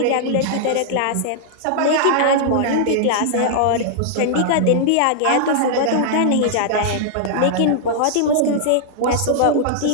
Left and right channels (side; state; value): both; different; correlation -0.01